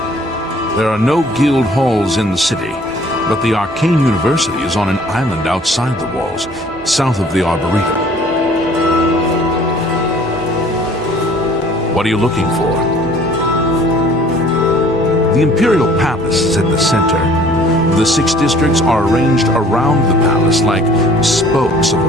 There are no guild halls in the city, but the Arcane University is on an island outside the walls, south of the Arboretum. What are you looking for? The Imperial Palace is at the center. The 6 districts are arranged around the palace like spokes of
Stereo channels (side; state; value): both; normal; correlation 0.54